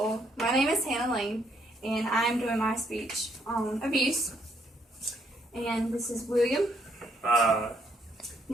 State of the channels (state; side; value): normal; both; correlation 0.71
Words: my name is Hannah Lane, and I'm doing my speech on abuse. And this is William,